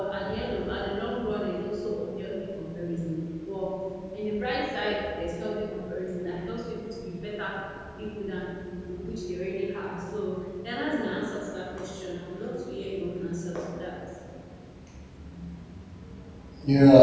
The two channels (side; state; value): both; identical; correlation 1.00